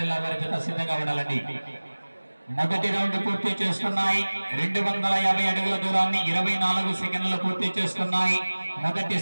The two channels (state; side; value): inverted; both; correlation -1.00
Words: వారి జత సిద్ధంగా ఉండాలండి. మొదటి రౌండ్ పూర్తి చేస్తున్నాయి. 250 అడుగుల దూరాన్ని 24 సెకండ్లు పూర్తి చేస్తున్నాయి. మొదటి